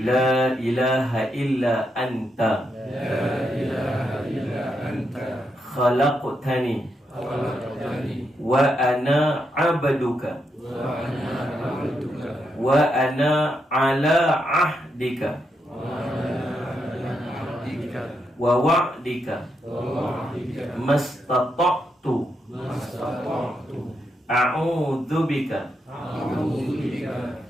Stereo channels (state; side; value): normal; both; correlation 0.81